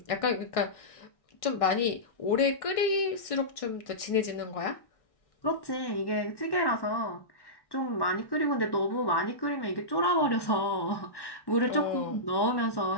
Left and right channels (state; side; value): late; right; 1.1 ms